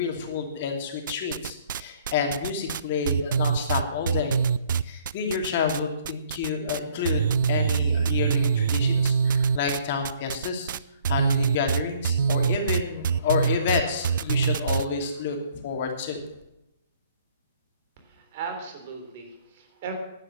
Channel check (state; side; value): inverted; both; correlation -0.61